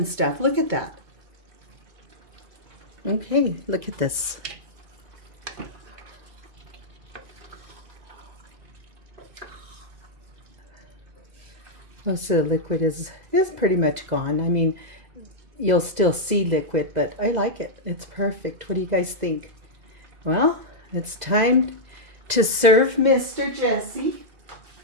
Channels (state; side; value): late; left; 2.0 ms